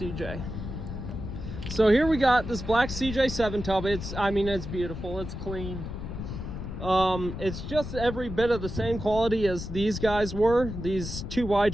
So here we got this black CJ7 tub. It's beautiful, it's clean. It's just every bit of the same quality as these guys were, these 2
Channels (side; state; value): left; noise; rumble, 7 dB below the sound